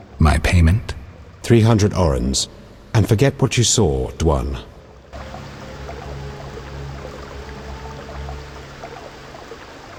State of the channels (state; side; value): identical; both; correlation 1.00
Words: My payment? 300 orens. And forget what you saw, Dwan.